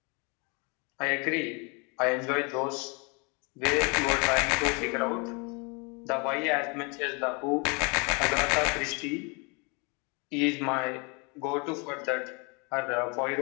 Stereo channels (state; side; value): quieter; right; 31.8 dB